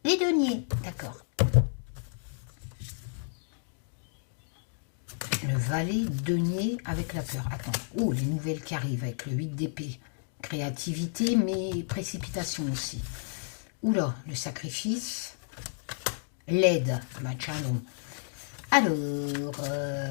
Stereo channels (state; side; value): silent; right; digital silence